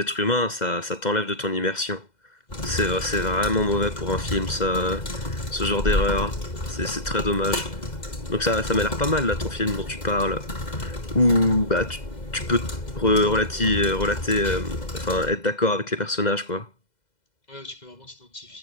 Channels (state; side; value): late; right; 2.0 ms